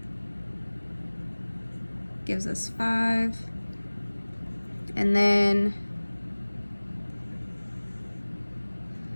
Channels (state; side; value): inverted; both; correlation -1.00